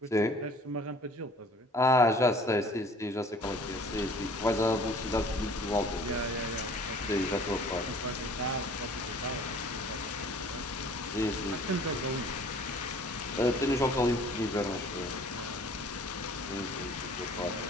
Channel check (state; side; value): normal; both; correlation 0.51